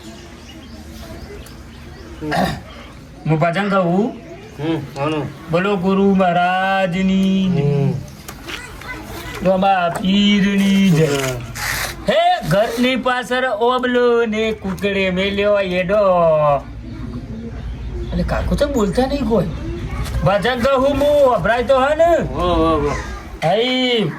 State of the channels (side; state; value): both; identical; correlation 1.00